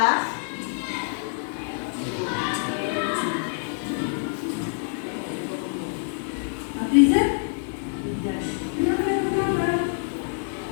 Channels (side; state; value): right; silent; 61 dB below the other